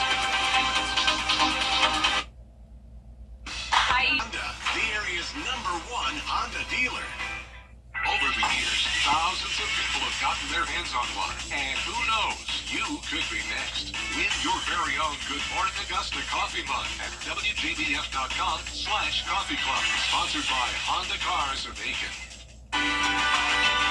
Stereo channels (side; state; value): both; identical; correlation 1.00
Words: going to be Honda, the area's #1 Honda dealer. Over the years, thousands of people have gotten their hands on one. And who knows, you could be next. Win your very own Good Morning Augusta coffee mug at WJBF.com/coffee club. Sponsored by Honda Cars of Aiken.